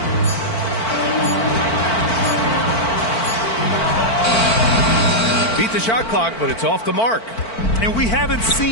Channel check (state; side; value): late; right; 4.5 ms